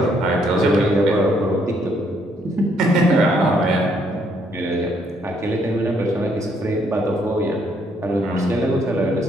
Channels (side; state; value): both; normal; correlation 0.70